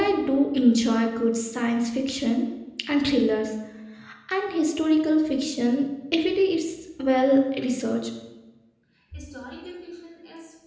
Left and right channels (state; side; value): identical; both; correlation 1.00